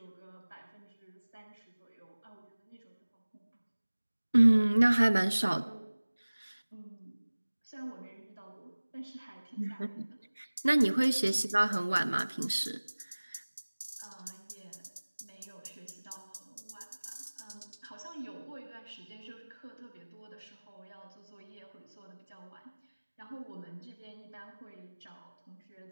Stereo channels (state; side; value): inverted; both; correlation -1.00